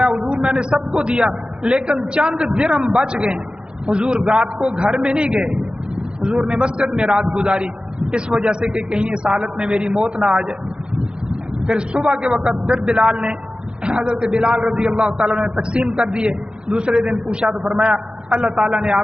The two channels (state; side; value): late; left; 0.050 ms